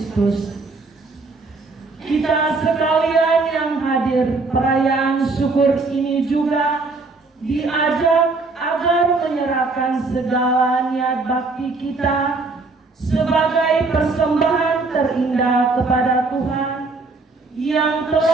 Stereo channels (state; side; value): quieter; left; 3.7 dB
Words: Kita sekalian yang hadir perayaan syukur ini juga diajak agar menyerahkan segala niat bakti kita sebagai persembahan terindah kepada Tuhan yang